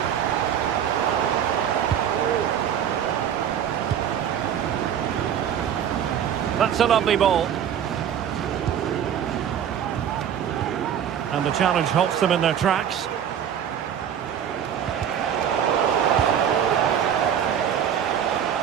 That's a lovely ball. And the challenge halts them in their tracks.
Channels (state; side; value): quieter; left; 9.1 dB